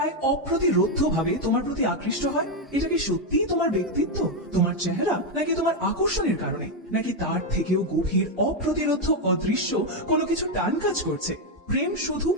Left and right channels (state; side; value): normal; both; correlation 0.04